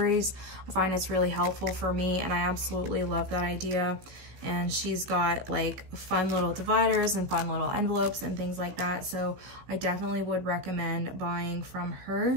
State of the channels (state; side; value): late; left; 16 ms